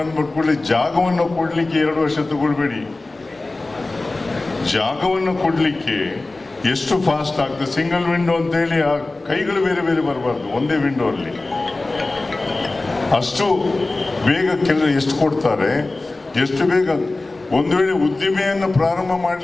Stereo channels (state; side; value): quieter; right; 3.1 dB